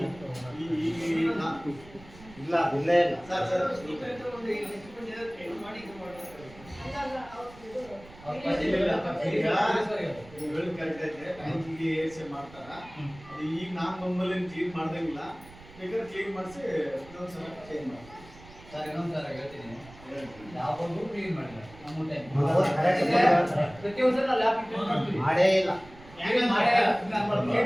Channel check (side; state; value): right; noise; rumble, 20 dB below the sound